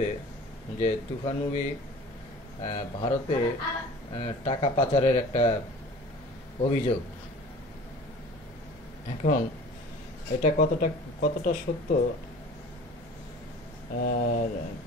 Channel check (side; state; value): both; normal; correlation 0.43